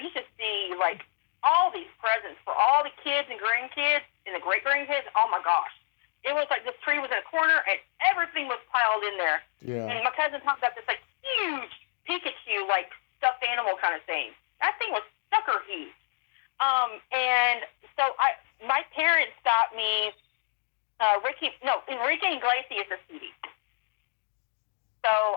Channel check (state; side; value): silent; right; 59 dB below the other